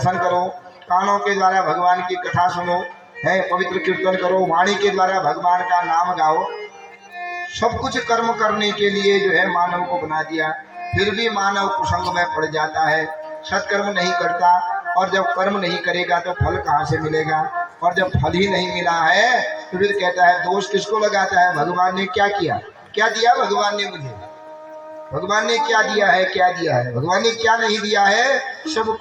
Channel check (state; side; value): identical; both; correlation 1.00